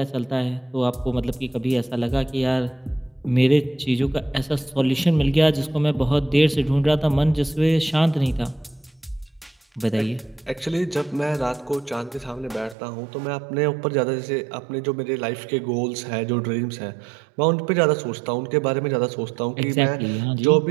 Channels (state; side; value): drops out; left; at 12.8 s